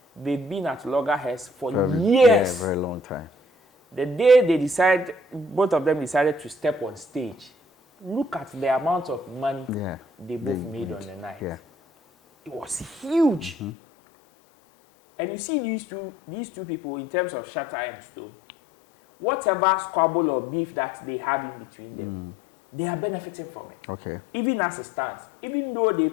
they've been at loggerheads for years. Yeah, very long time. The day both of them decided to step on stage, look at the amount of money they both made on the night. Yeah. It was huge. And you see these two people, in terms of Shatta and Stone, whatever squabble or beef that they have in between them, they are benefiting from it. Okay. Even as it stands, even though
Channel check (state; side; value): drops out; right; at 13.7 s